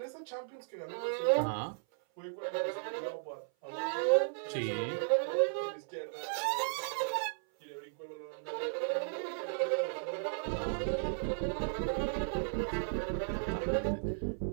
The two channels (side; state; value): left; silent; 54 dB below the other